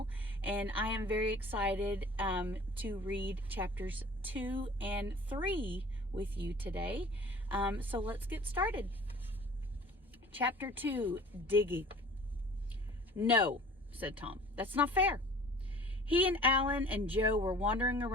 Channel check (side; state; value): both; normal; correlation 0.46